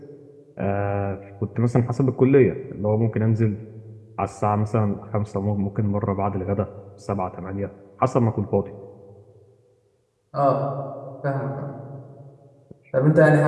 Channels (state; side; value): identical; both; correlation 1.00